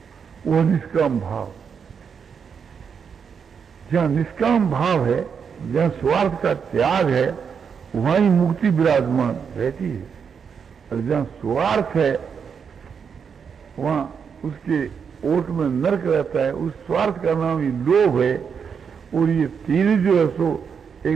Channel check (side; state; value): left; quieter; 6.6 dB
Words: वो निष्काम भाव। जहाँ निष्काम भाव है, जहाँ स्वार्थ का त्याग है, वहां ही मुक्ति विराजमान रहती है। और जहाँ स्वार्थ है वहां उसके ओट में नरक रहता है। उस स्वार्थ का नाम ही लोभ है। और ये तीन जो है सो